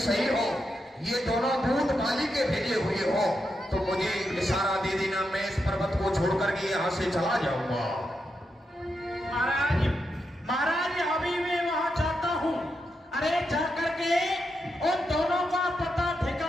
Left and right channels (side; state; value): both; normal; correlation 0.85